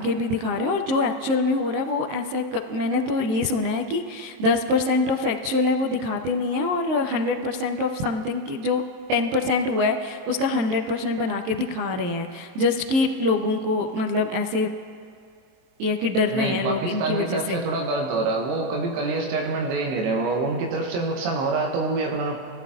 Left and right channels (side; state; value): left; late; 23 ms